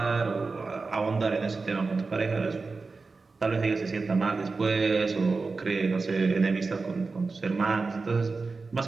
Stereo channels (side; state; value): left; quieter; 4.1 dB